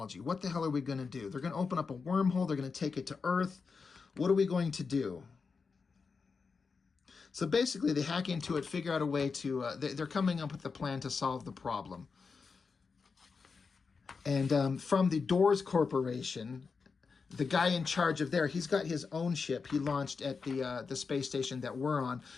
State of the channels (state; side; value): quieter; right; 5.0 dB